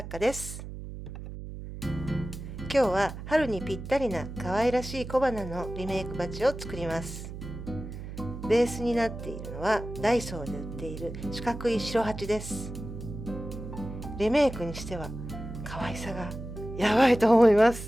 家です。今日は春にぴったりな可愛らしい小花のリメイクバッジを作ります。ベースになっているのはダイソーで売っている四角い白鉢です。リメイクにしては可愛さがやばいと思いま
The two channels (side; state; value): right; noise; hum, 10 dB below the sound